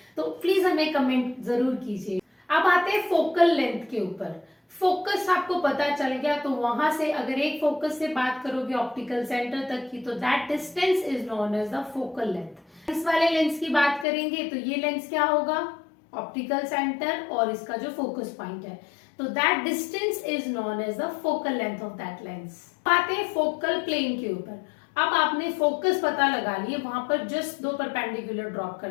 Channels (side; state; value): right; drops out; at 14.1 s